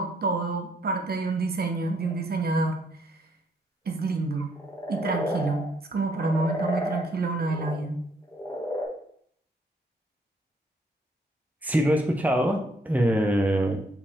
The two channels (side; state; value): both; normal; correlation 0.70